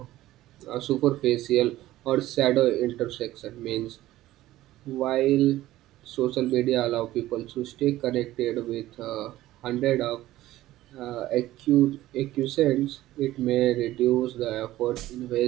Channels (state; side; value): quieter; left; 15.5 dB